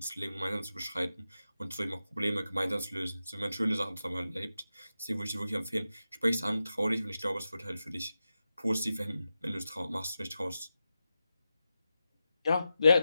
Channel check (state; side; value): inverted; both; correlation -0.91